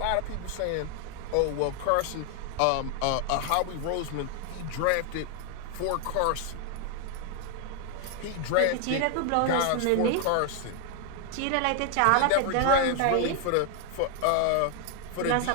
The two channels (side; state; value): both; different; correlation 0.00